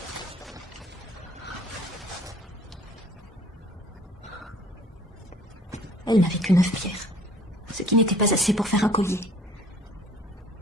Elle n'avait que 9 pierres, ce qui n'était pas assez pour faire un collier.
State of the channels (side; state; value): both; normal; correlation 0.53